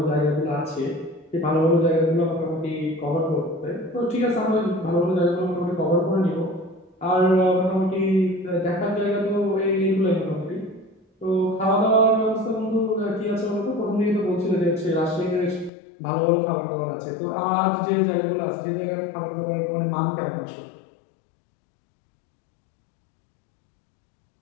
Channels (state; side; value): drops out; right; at 15.7 s